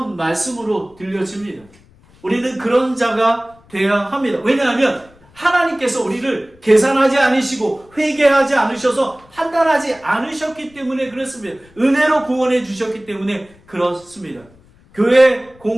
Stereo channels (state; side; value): noise; left; rumble, 28 dB below the sound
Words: 말씀으로 들려집니다. 우리는 그런 자가 되어야 합니다. 왜냐하면 하나님께서 우리를 계산하지 않으시고 회개하지 않으셔서 판단하지 않으셨기 때문에 그렇습니다. 은혜로 구원해 주셨기 때문에 그렇습니다. 교회